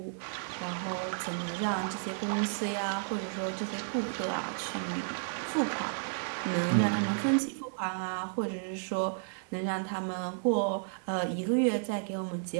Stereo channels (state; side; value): silent; left; 56 dB below the other